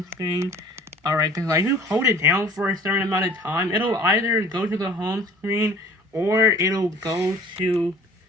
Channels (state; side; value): normal; both; correlation 0.48